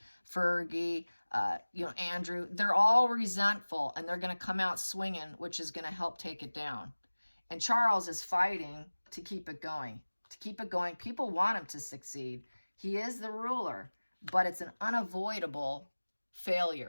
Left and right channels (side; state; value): both; inverted; correlation -1.00